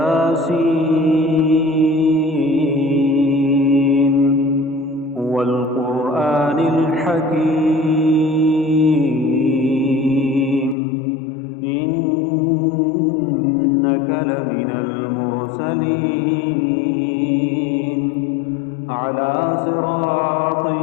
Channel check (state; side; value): drops out; right; at 10.8 s